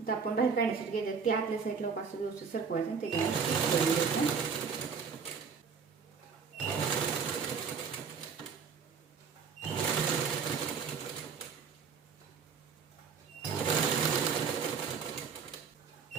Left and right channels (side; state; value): left; quieter; 6.0 dB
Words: तर आपण बाहेर काढण्यासाठी घ्यायचं ते आतल्या साईडला असं व्यवस्थित सरकवायचं आणि त्याच्यावर